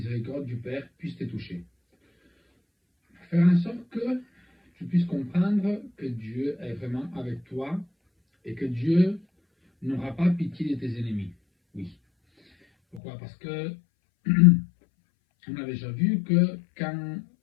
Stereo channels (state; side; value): drops out; right; at 13.0 s